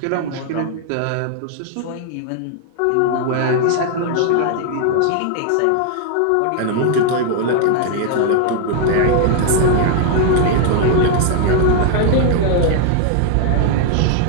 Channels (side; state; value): both; different; correlation 0.00